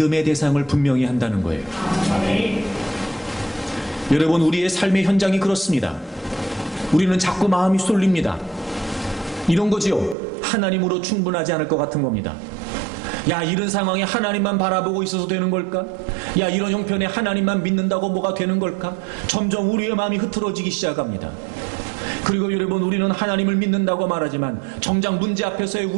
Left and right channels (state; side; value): drops out; left; at 10.2 s